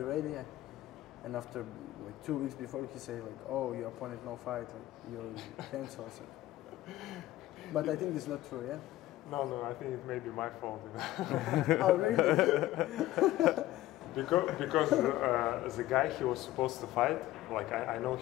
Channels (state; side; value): quieter; right; 15.7 dB